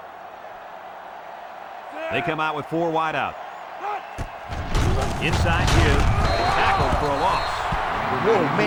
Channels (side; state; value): both; identical; correlation 1.00